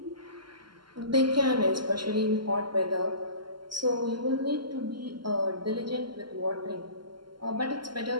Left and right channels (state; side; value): late; left; 0.72 ms